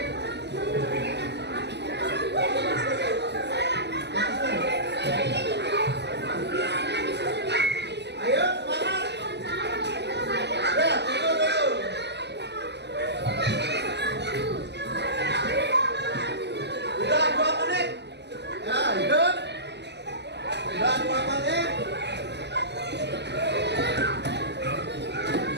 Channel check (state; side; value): late; left; 0.50 ms